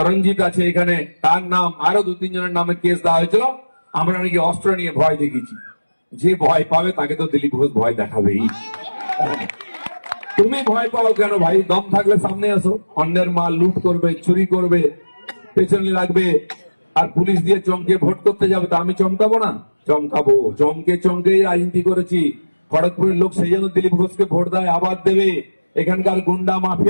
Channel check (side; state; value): both; inverted; correlation -1.00